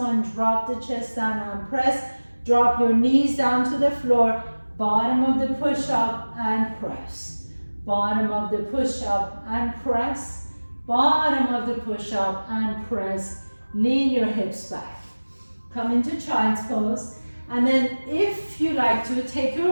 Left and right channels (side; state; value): both; inverted; correlation -1.00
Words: drop the chest down and press. Drop your knees down to the floor, bottom of the push-up and press. Bottom of the push-up and press. Bottom of the push-up and press. Lean your hips back. Come into child's pose. And then if you like to, take